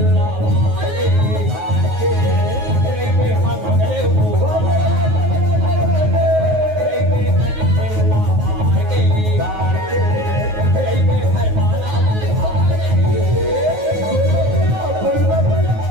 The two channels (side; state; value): left; late; 9.4 ms